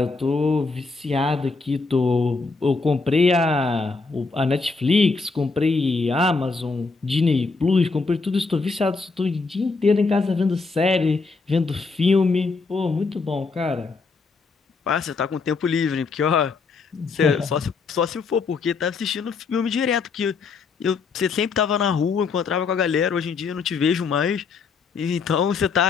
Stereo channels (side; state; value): right; quieter; 4.4 dB